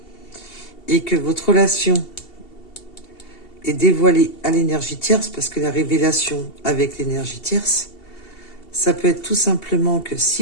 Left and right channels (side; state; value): right; late; 2.7 ms